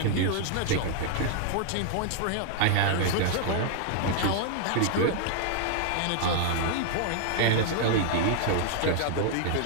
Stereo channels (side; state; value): both; different; correlation 0.00